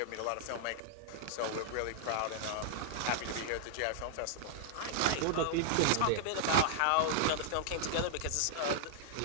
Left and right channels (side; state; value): both; different; correlation -0.01